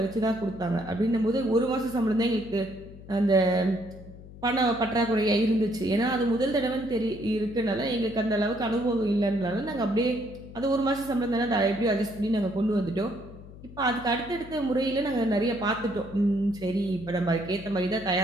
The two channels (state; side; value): noise; left; hum, 17 dB below the sound